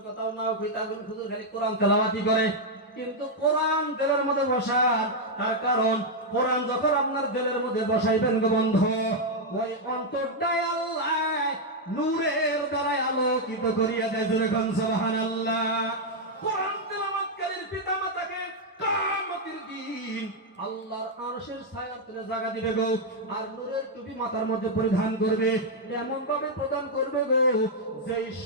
কথাও নাও কই, তাহলে হুজুর খালি কোরআন তেলাওয়াতি করে। কিন্তু কোরআন দিলের মধ্যে বসান, তার কারণ কোরআন যখন আপনার দিলের মধ্যে বসাইবেন গো বন্ধু, ওই অন্তরটাই আল্লাহ নূরের দ্বারা আলোকিত করিয়া দেয়। জোরে কোন সুবহানাল্লাহ। কোরআন তেলাওয়াতকারীর পিতামাতাকে কিয়ামতের দিন আল্লাহর আরশের ছায়ার তলে জায়গা দিবে গো, আর নূরের টুপি মাথার মধ্যে পরিধান করবে, এমন ভাবে প্রদান করবে গো যেই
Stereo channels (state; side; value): normal; both; correlation -0.01